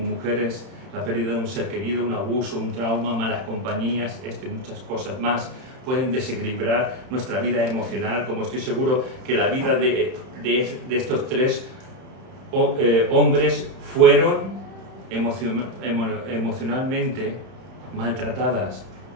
la pérdida de un ser querido, un abuso, un trauma, malas compañías, esto y muchas cosas más pueden desequilibrar nuestra vida emocional, como estoy seguro que la vida de estos tres hombres fueron emocionalmente maltratadas.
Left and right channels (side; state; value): left; late; 31 ms